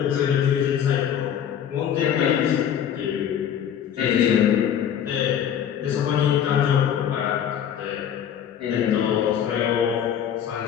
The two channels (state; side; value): quieter; right; 9.2 dB